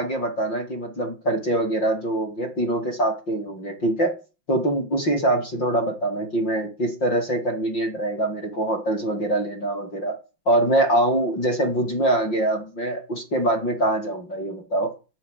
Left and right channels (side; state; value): right; late; 5.7 ms